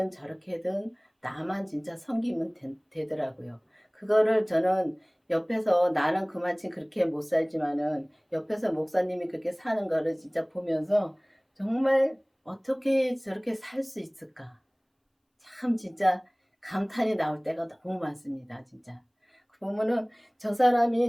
저렇게든 나만 진짜 섬기면 되더라고요. 그거를 저는 옆에서 나는 그만큼 그렇게 못 살지만은 옆에서 목사님이 그렇게 사는 거를 진짜 보면서 정말 어떻게 저렇게 살 수 있을까? 참 진짜 감탄이 나올 때가 너무 많습니다. 진짜. 보면은 저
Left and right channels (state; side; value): identical; both; correlation 1.00